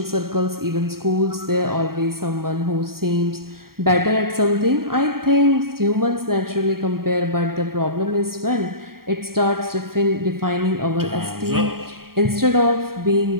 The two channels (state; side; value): late; left; 0.93 ms